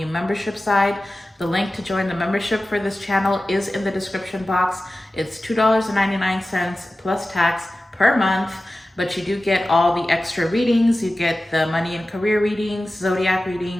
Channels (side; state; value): both; normal; correlation 0.95